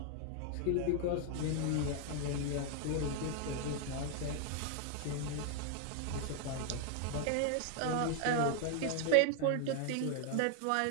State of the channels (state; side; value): different; both; correlation 0.00